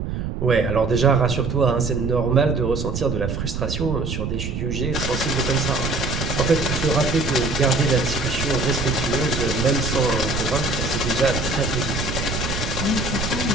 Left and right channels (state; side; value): noise; right; rumble, 4 dB below the sound